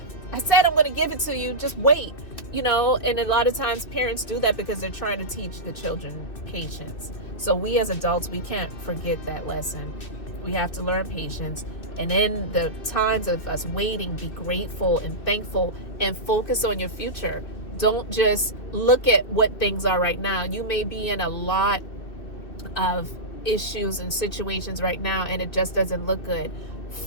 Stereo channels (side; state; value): right; late; 2.6 ms